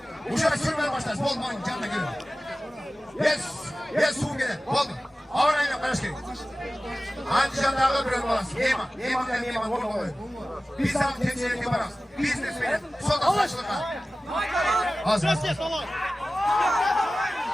Uşağı sürmeye başlar. Bolmayın canına girin. Yes, Sungele. Oldu. Ağırayla karışkı. Anticanlarla bir olmaz. Yeman olmalı. Biz sana temsil edip yaparız. Biznesmenin son saçlığa. Az. Bol.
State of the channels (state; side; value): normal; both; correlation 0.96